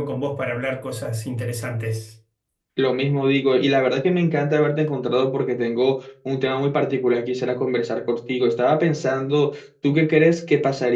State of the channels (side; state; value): both; identical; correlation 1.00